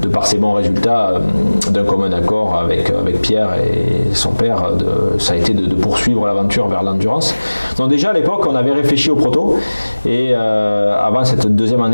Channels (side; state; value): both; inverted; correlation -1.00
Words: par ses bons résultats, d'un commun accord avec Pierre et son père, ça a été de poursuivre l'aventure vers l'endurance. Donc déjà à l'époque, on avait réfléchi au proto, et avant cette deuxième